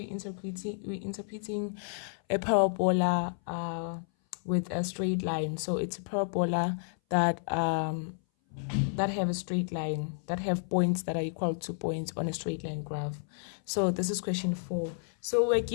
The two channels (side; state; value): right; silent; 57 dB below the other